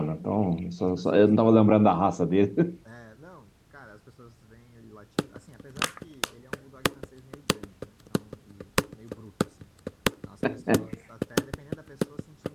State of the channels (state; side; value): identical; both; correlation 1.00